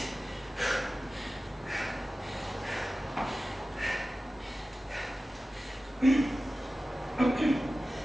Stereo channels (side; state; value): both; normal; correlation 0.95